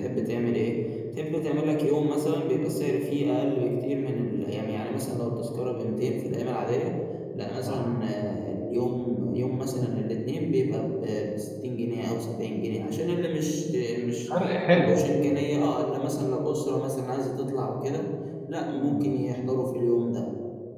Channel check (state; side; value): identical; both; correlation 1.00